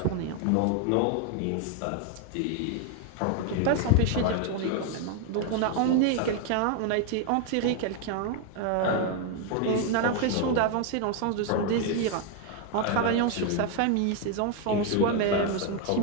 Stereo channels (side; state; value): both; different; correlation 0.01